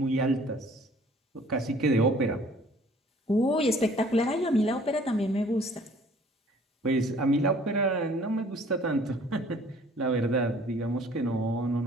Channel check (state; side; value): normal; both; correlation 0.54